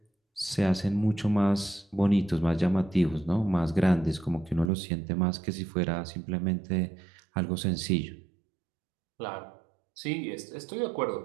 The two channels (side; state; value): left; drops out; at 4.7 s